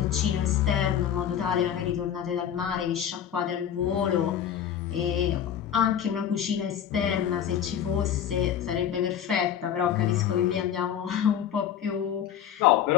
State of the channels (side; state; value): right; quieter; 9.4 dB